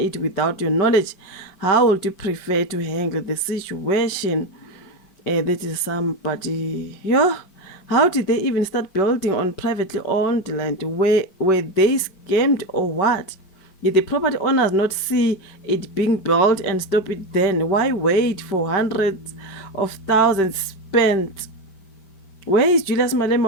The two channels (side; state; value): right; late; 5.2 ms